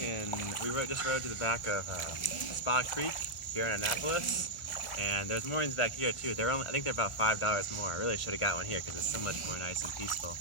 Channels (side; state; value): right; late; 1.4 ms